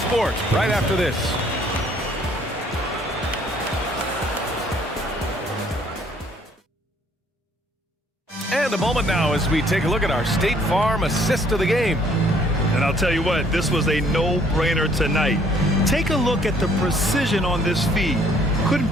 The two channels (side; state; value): both; normal; correlation 0.62